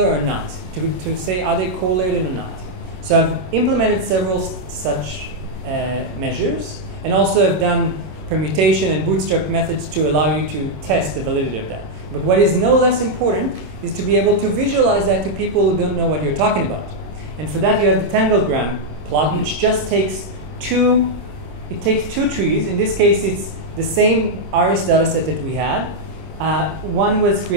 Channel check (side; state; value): left; late; 27 ms